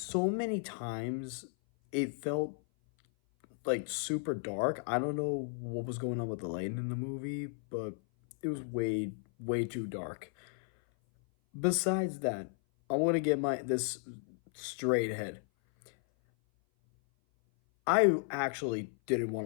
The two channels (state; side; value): silent; right; 55 dB below the other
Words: many times it felt like super dark. I don't know what was going on with the lighting in the movie, but it was way too dark. Besides that, I want to get my this straight ahead. I actually didn't want